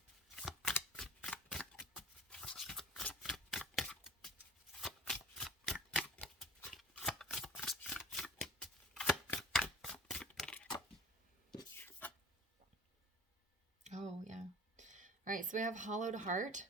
Oh, yeah. All right, so we have hollowed heart,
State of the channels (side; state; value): both; normal; correlation 0.40